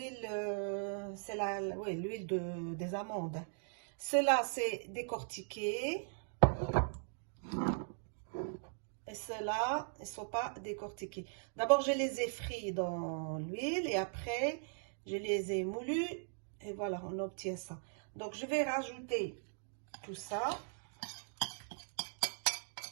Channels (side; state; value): left; silent; digital silence